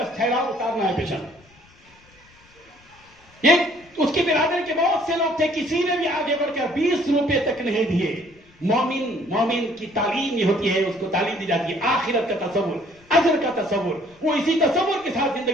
ٹھہراؤ, اتارنا ہے پیشنٹ. یہ اس کی برادری کے بہت سے لوگ تھے, کسی نے بھی آگے بڑھ کر 20 روپے تک نہیں دیے. مومن کی تعلیم یہ ہوتی ہے, اس کو تعلیم دی جاتی ہے آخرت کا تصور, اجر کا تصور. وہ اسی تصور کے ساتھ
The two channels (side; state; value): left; noise; rumble, 29 dB below the sound